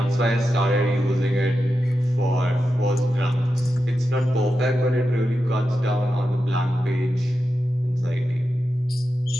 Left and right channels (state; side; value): normal; both; correlation 0.90